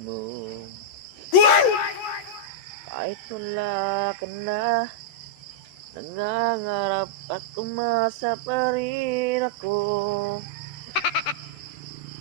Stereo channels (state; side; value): late; right; 14 ms